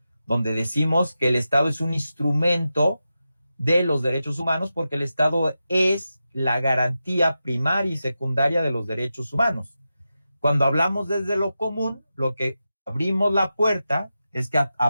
donde decimos que el Estado es un instrumento de los derechos humanos porque el Estado es la garantía primaria y secundaria de los derechos humanos. Cuando hablamos desde lo común, lo que abrimos la puerta es que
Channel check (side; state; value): both; inverted; correlation -0.91